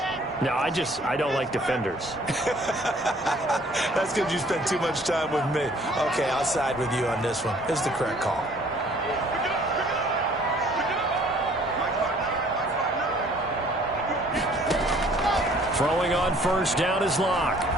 No, I don't like defenders. That's because you spent too much time with me. Okay, I'll side with you on this one. It's the correct call. Throwing on 1st down is Locke.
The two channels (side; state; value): both; normal; correlation 0.57